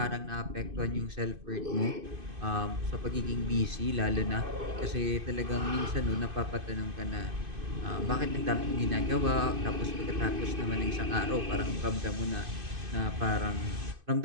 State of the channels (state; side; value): late; left; 2.5 ms